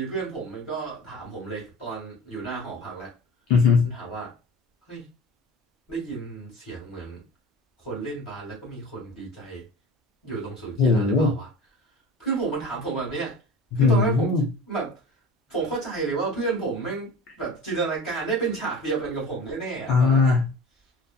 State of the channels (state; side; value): normal; both; correlation 0.39